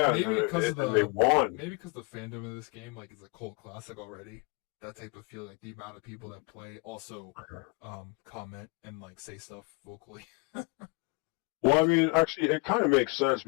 because they won. Maybe because the fandom of this game, like, is a cult classic already. That type of feeling, like the amount of people that play also comment and like say stuff vocally. Well, I mean, actually, it kind of makes sense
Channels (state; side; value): quieter; right; 28.8 dB